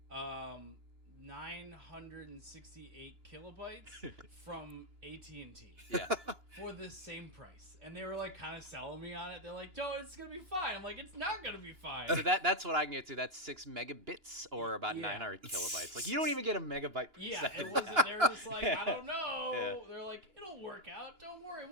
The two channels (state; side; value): late; left; 2.9 ms